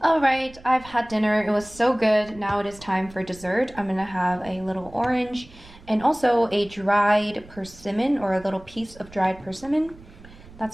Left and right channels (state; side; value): noise; right; rumble, 21 dB below the sound